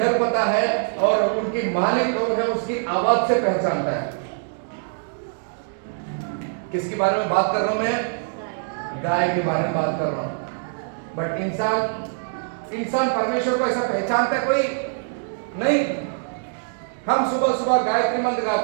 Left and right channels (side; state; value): left; silent; digital silence